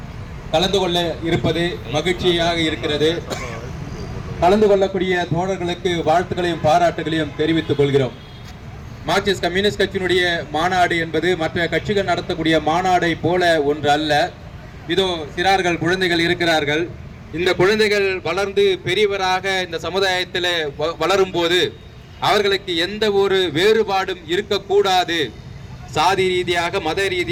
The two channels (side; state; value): both; identical; correlation 1.00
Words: கலந்து கொள்ள இருப்பது மகிழ்ச்சியாக இருக்கிறது. கலந்து கொள்ளக்கூடிய தோழர்களுக்கு வாழ்த்துக்களையும் பாராட்டுகளையும் தெரிவித்துக் கொள்கிறோம். மார்க்சிஸ்ட் கம்யூனிஸ்ட் கட்சியினுடைய மாநாடு என்பது மற்ற கட்சிகள் நடத்தக்கூடிய மாநாடை போல ஒன்று அல்ல. இதோ சிறார்கள் குழந்தைகள் இருக்கிறார்கள். இந்த குழந்தைகள் வளர்ந்து பெரியவராக இந்த சமுதாயத்தில் வளரும் போது அவர்களுக்கு எந்த ஒரு வேறுபாடும் இருக்கக்கூடாது. சாதி ரீதியாக, மத